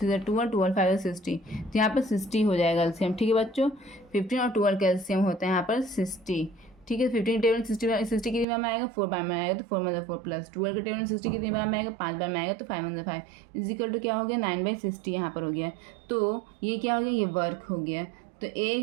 12 12 5 60। तो यहाँ पर 60 हो जाएगा एलसीएम। ठीक है बच्चों, 15 और 12 का एलसीएम होता है यहाँ पर 60। ठीक है, 15 के टेबल में 60 कितनी बार में आएगा, 4 बार में आएगा। तो 4 मतलब 4 प्लस 12 के टेबल में 60 कितनी बार में आएगा, 5 बार में आएगा। तो 5 मतलब 5 इजिकल टू क्या हो गया, 9/60 यहाँ पर हो गया। तो ये क्या हो गया, ये वर्क हो गया। तो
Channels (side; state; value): left; drops out; at 8.5 s